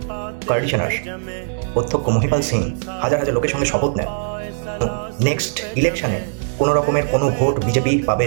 কন্ডিশনার অধ্যক্ষ মহিপাল সিং হাজার হাজার লোকের সঙ্গে শপথ নেন নেক্সট ইলেকশনে কোনো রকমের কোনো ভোট বিজেপি পাবে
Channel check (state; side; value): silent; left; digital silence